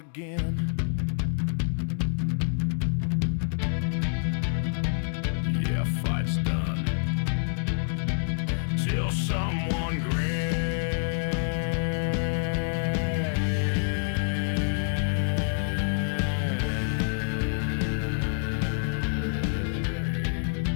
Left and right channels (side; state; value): right; silent; 60 dB below the other